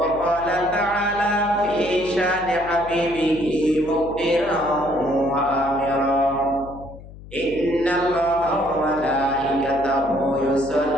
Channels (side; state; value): left; noise; hum, 17 dB below the sound